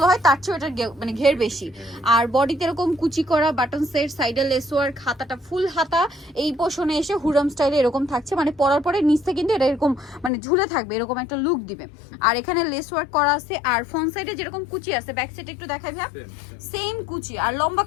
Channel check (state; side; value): drops out; right; at 10.3 s